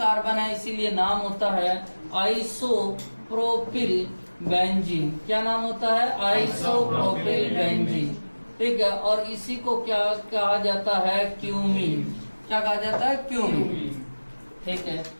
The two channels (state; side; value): inverted; both; correlation -1.00